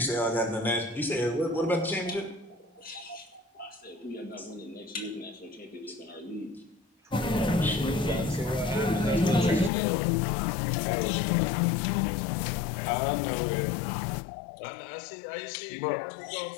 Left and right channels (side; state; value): right; drops out; at 9.7 s